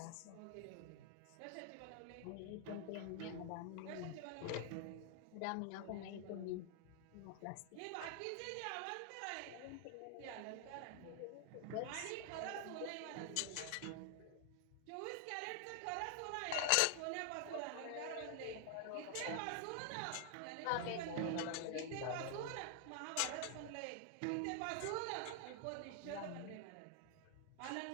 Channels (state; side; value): different; both; correlation 0.00